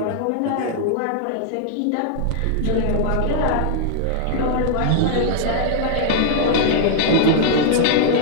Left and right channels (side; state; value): both; different; correlation -0.01